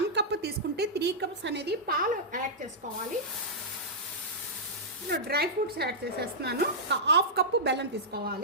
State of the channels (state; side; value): normal; both; correlation -0.11